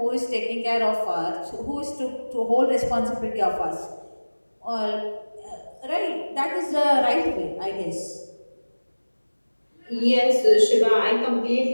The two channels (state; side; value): inverted; both; correlation -1.00